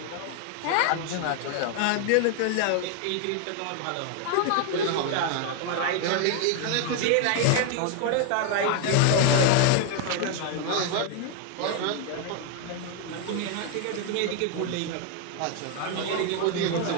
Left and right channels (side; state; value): both; different; correlation 0.00